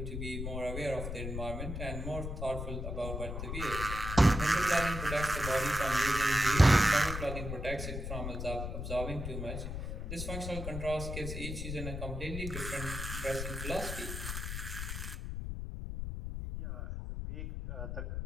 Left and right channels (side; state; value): left; noise; rumble, 5 dB below the sound